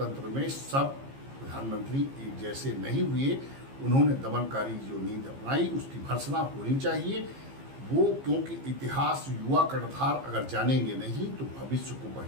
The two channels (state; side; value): late; left; 15 ms